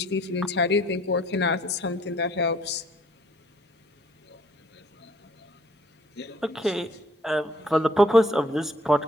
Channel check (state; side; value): normal; both; correlation 0.60